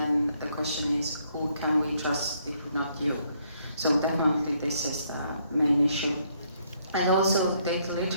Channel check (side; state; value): both; inverted; correlation -0.70